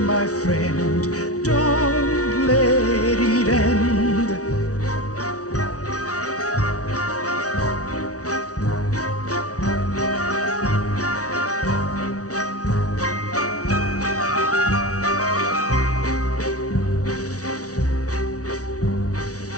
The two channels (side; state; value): right; late; 0.67 ms